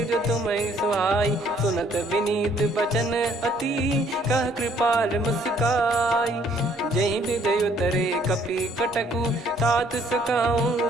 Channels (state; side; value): normal; both; correlation 0.63